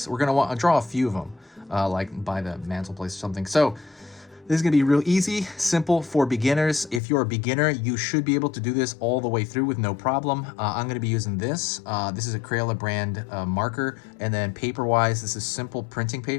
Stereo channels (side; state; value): right; drops out; at 7.0 s